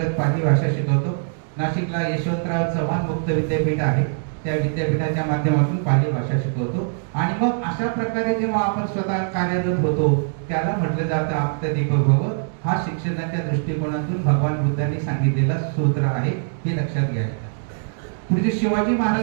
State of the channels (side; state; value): left; silent; digital silence